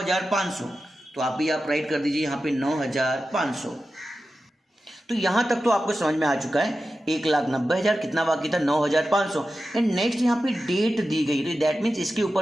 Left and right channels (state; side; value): normal; both; correlation 0.93